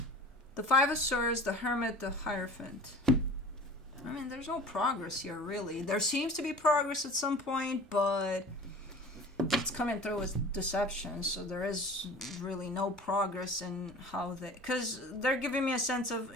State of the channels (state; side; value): normal; both; correlation 0.42